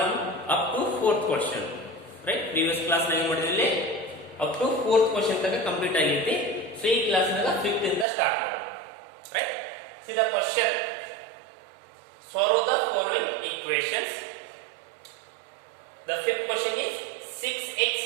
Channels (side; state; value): left; drops out; at 8.1 s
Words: up to 4th question. Right? Previous class nine ಮಾಡಿದ್ರಲ್ಲಿ up to 4th question ತನಕ ಕಂಪ್ಲೀಟ್ ಆಗಿರುತ್ತೆ. So ಈ ಕ್ಲಾಸ್ ನಾಗ 5th ಇಂದ ಸ್ಟಾರ್ಟ್ ಮಾಡೋಣ. Right? See the question. Solve the following equations. The 5th question is 6x